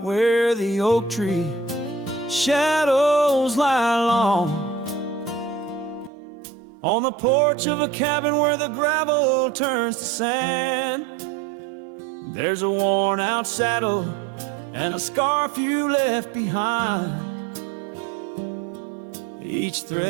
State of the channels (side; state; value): left; drops out; at 6.1 s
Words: where the oak tree shadows lie long, on the porch of a cabin where the gravel turns to sand, there's a worn out saddle and a scarf you left behind. Each